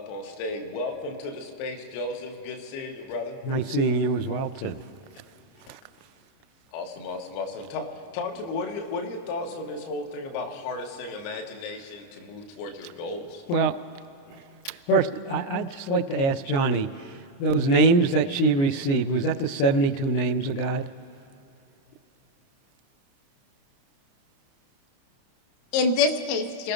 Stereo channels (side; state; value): right; late; 29 ms